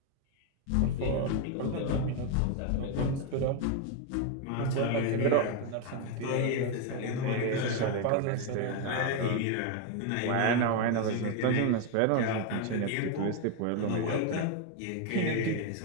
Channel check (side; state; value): both; different; correlation 0.01